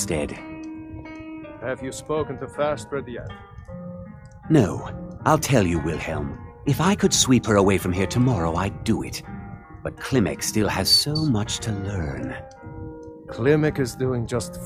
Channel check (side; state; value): both; identical; correlation 1.00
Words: Have you spoken to Fastred yet? No. I'll tell you, Wilhelm. If I could sweep her away from here tomorrow, I'd do it. But Klimek still has so much to learn. Klimek is doing just